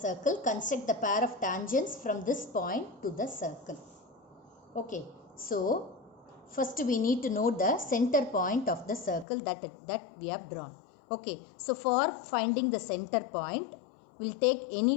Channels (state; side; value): drops out; right; at 9.2 s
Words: construct the pair of tangents from this point to the circle. Okay, so first we need to know the center point of the circle that we have drawn. Okay, so for finding the center point, we'll take